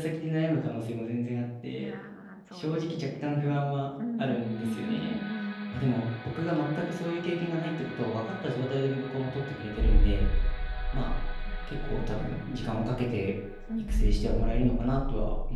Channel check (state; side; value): identical; both; correlation 1.00